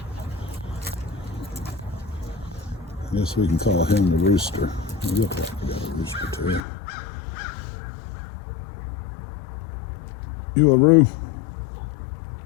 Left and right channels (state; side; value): drops out; right; at 6.6 s